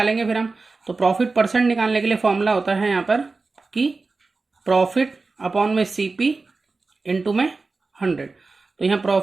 फिर हम। तो प्रॉफिट परसेंट निकालने के लिए फॉर्मूला होता है यहाँ पर कि प्रॉफिट अपॉन में CP इंटू में 100। तो यहाँ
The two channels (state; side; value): quieter; left; 3.9 dB